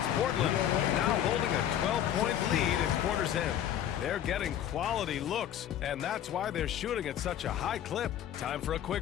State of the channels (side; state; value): right; quieter; 10.7 dB